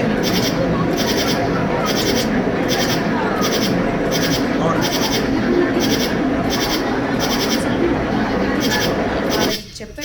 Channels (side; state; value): both; identical; correlation 1.00